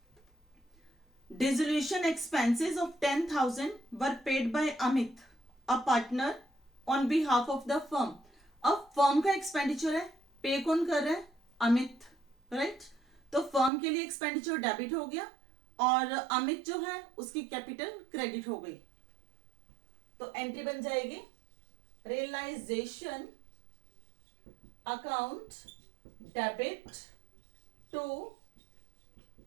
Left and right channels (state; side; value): drops out; left; at 13.7 s